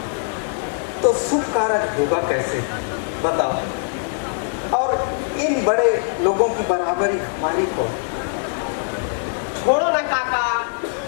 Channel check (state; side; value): silent; right; 64 dB below the other